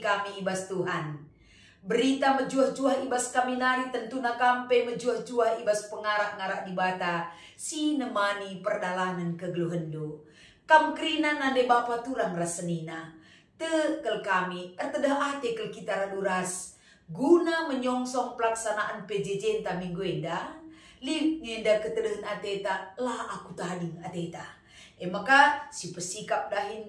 ibas Tuhan. Berita mejuah-juah ibas kami nari tentu na kampe mejuah-juah ibas pengarak-ngarak di bata. Si nemani perdalanan kegluhendo. Kam krina nande bapa turang rasenina. Tekel kami ertedah kel kita raduras. Guna menyongsong pelaksanaan PJJ enta minggu enda. Li ngenda ketedahan ateta lah aku tading ateta. Maka si pesikap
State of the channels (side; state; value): both; identical; correlation 1.00